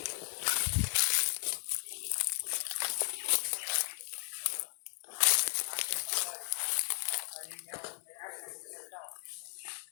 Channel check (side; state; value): right; silent; 54 dB below the other